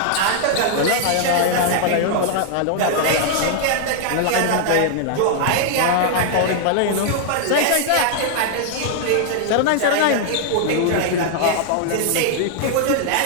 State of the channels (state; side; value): different; both; correlation 0.00